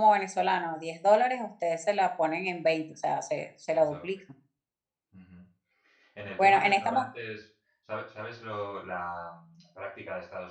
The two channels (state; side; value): identical; both; correlation 1.00